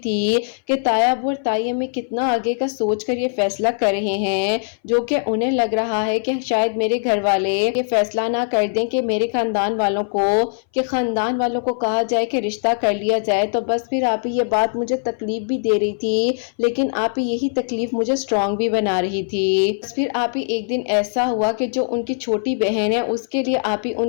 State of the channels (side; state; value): right; silent; 62 dB below the other